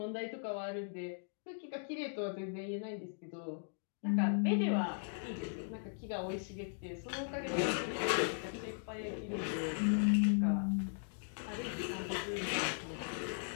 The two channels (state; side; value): silent; right; digital silence